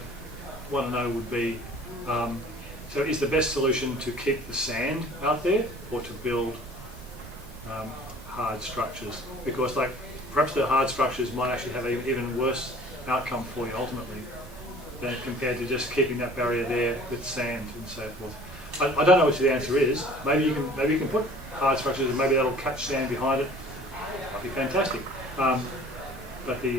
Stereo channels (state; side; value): noise; right; rumble, 16 dB below the sound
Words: want to know would be, so is the best solution to keep the sand out there or to build hard structures? Because perhaps the hard structures might actually have an even worse outcome for you ultimately than compared to just keeping that barrier there with sand and so forth. I don't know what the answer is. Maybe you can put hard structures and maybe that'll catch sand behind it. That'd be fantastic. But